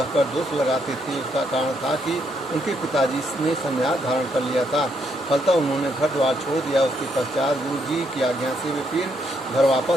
दोष लगाते थे। उसका कारण था कि उनके पिताजी ने संन्यास धारण कर लिया था। फलतः उन्होंने घर द्वार छोड़ दिया। उसके पश्चात गुरु जी की आज्ञा से वे फिर घर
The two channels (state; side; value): normal; both; correlation 0.75